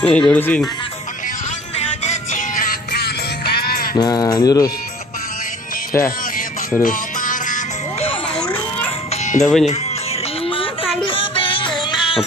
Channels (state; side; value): normal; both; correlation 0.48